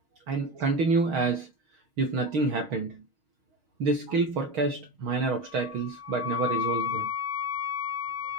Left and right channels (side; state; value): left; late; 6.4 ms